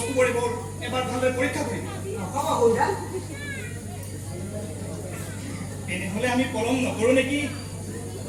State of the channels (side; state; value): both; identical; correlation 1.00